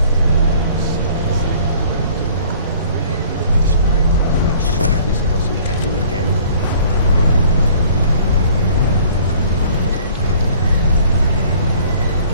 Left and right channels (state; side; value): inverted; both; correlation -0.53